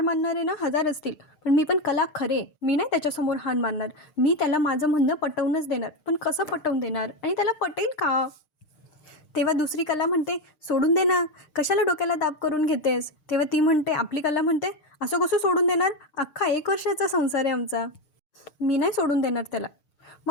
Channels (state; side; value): late; right; 6.5 ms